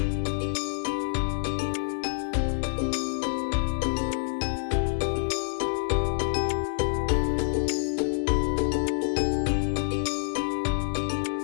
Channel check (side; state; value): right; silent; digital silence